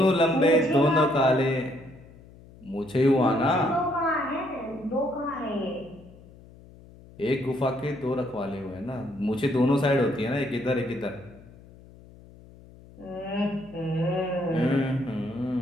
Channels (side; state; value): left; noise; hum, 22 dB below the sound